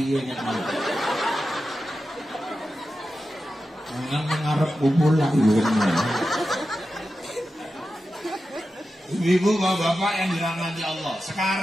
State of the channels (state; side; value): normal; both; correlation 0.92